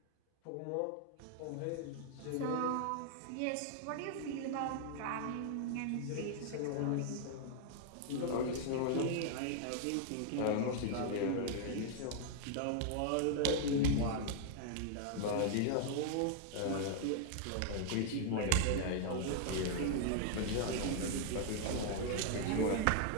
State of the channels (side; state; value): both; different; correlation 0.00